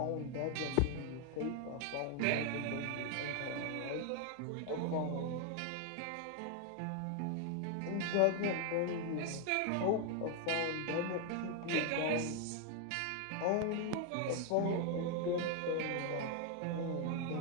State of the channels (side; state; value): both; different; correlation 0.01